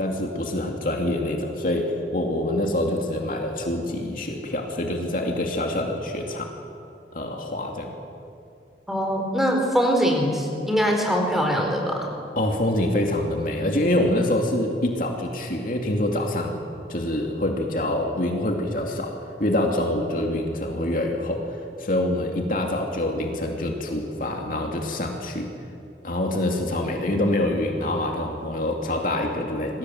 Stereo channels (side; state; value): both; normal; correlation 0.49